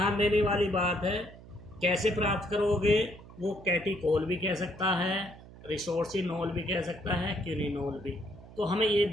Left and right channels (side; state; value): right; noise; hum, 19 dB below the sound